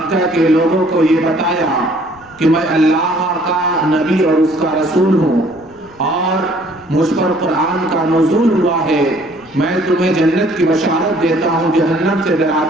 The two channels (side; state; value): left; noise; rumble, 27 dB below the sound